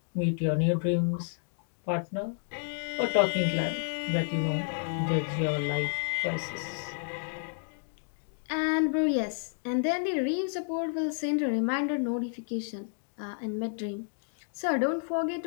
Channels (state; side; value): silent; right; digital silence